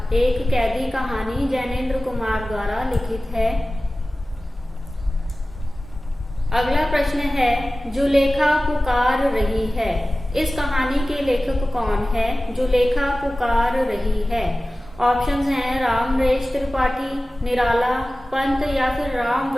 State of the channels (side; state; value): both; normal; correlation 0.96